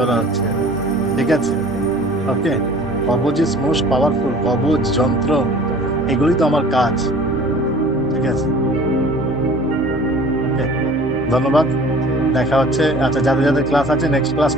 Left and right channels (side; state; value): both; normal; correlation 0.47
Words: হচ্ছে। ঠিক আছে, ওকে। কবচ ইজ মোস্ট পাওয়ারফুল। কবচ, যন্ত্র, এগুলি তো আমার কাজ। ঠিক আছে, ওকে, ধন্যবাদ। দেখা হচ্ছে। আচ্ছা, যাদের যাদের ক্লাস আছে, নেক্সট ক্লাস